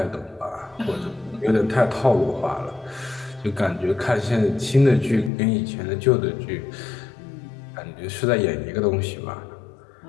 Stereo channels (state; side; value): drops out; right; at 5.3 s